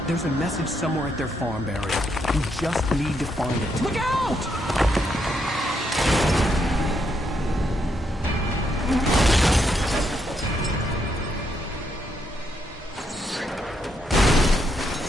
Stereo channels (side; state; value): both; normal; correlation 0.77